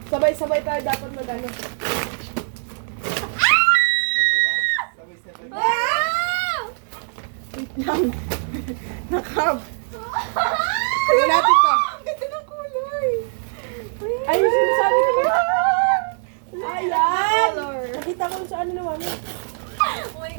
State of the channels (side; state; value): left; silent; digital silence